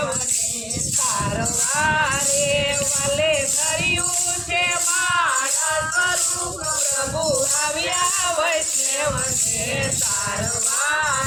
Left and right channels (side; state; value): both; identical; correlation 1.00